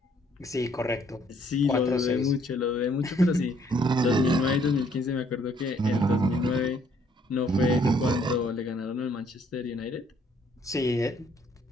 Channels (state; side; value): normal; both; correlation 0.65